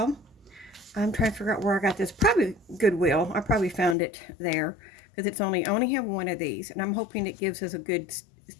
I'm trying to figure out where I got this. Probably Goodwill. I probably found it there because it's only have one of these, and I'm hoping it gives us a good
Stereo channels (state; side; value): drops out; right; at 4.0 s